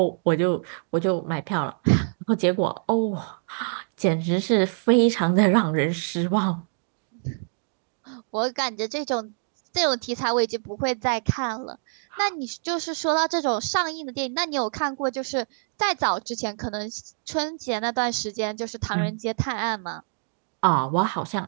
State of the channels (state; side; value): silent; left; 61 dB below the other